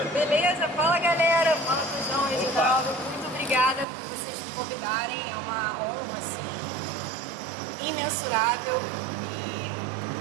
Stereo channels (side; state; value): left; drops out; at 3.9 s